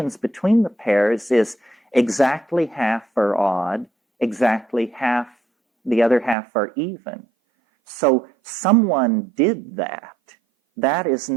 between the pairs is exactly half are odd, exactly half, the other half are even. So someone did that. That is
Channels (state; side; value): drops out; left; at 6.4 s